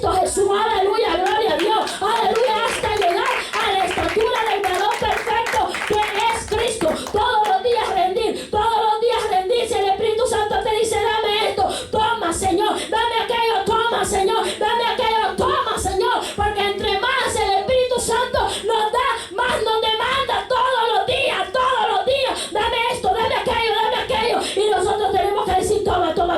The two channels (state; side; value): identical; both; correlation 1.00